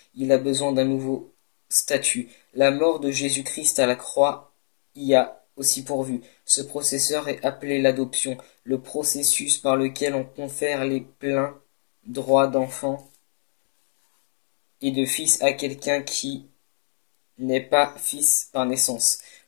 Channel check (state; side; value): silent; right; digital silence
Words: il a besoin d'un nouveau statut. La mort de Jésus-Christ à la croix y a aussi pourvu. Ce processeur est appelé l'adoption, le processus par lequel on confère les pleins droits d'enfant et de fils à quelqu'un qui n'est pas fils par naissance.